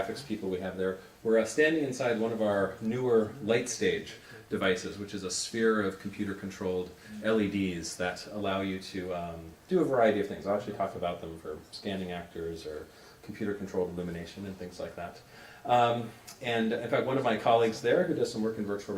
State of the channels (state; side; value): identical; both; correlation 1.00